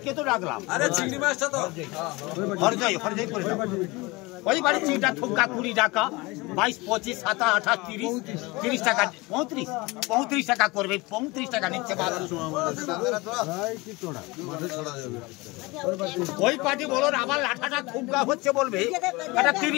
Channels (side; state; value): right; quieter; 23.7 dB